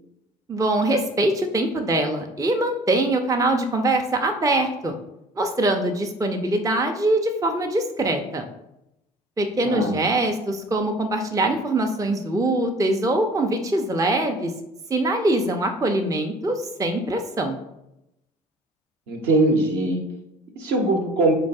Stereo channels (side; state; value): both; normal; correlation 0.49